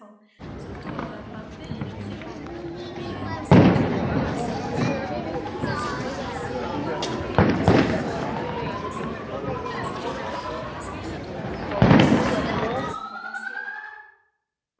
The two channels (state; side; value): identical; both; correlation 1.00